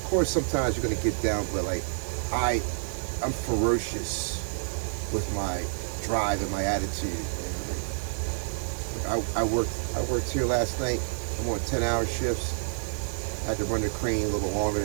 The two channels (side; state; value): left; silent; digital silence